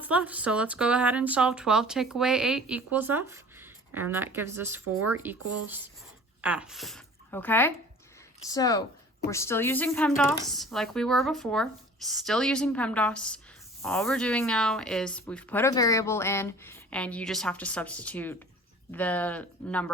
left. So let's go ahead and solve 12 take away 8 equals f. And that gives us 4 equals f. Okay? So we're still using PEMDAS like we were before. Still using PEMDAS. All we're doing now is we've put a variable in and you just have to substitute the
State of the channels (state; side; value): normal; both; correlation 0.45